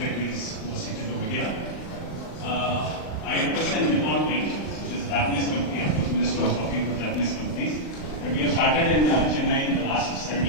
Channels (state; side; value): late; right; 38 ms